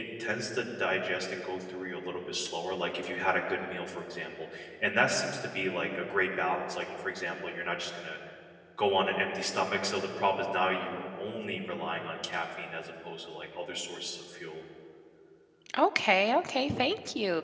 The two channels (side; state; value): both; identical; correlation 1.00